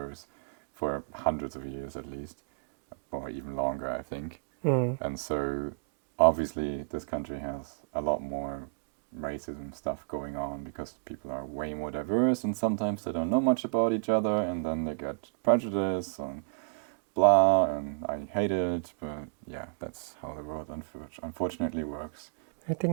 for hundreds of years at least, or even longer, I think. And so obviously this country has a lot more racism stuff going on because people are way more diverse and sometimes they don't know much about each other and then they get prejudice and blah, and I hate it, but yeah, that's how the world unfortunately works. I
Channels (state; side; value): silent; left; digital silence